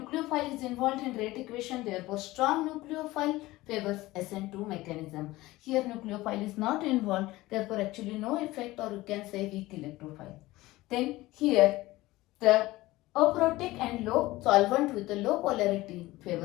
is involved in rate equation, therefore strong nucleophile favors SN2 mechanism. Here nucleophile is not involved, therefore actually no effect, or you can say weak electrophile. Then here the aprotic and low solvent with a low polarity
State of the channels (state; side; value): quieter; right; 18.5 dB